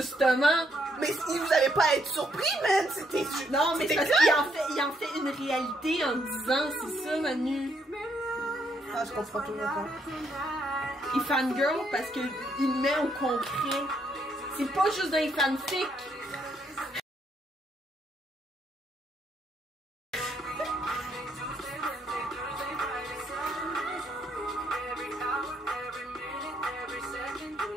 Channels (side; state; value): both; normal; correlation 0.73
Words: Mais si vous avez pas à être surpris, man! C'était... Non, mais c'est parce qu'il en fait une réalité en disant, c'est ça, Manu. Ah, je comprends toujours pas. Il fangirl parce qu'il met au concret. C'est pas juste des fanfics.